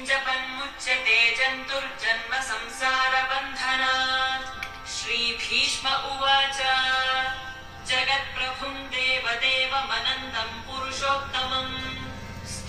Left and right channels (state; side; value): identical; both; correlation 1.00